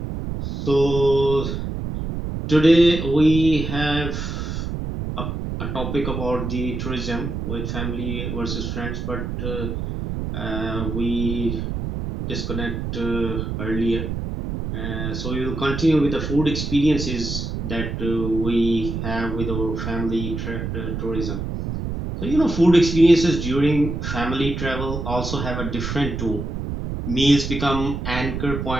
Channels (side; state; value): right; noise; rumble, 4 dB below the sound